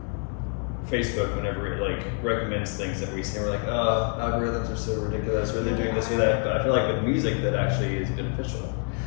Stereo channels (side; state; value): right; quieter; 39.9 dB